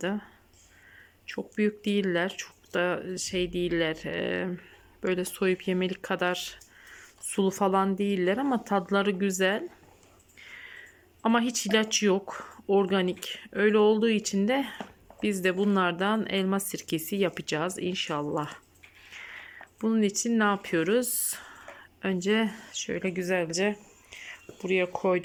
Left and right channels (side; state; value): both; identical; correlation 1.00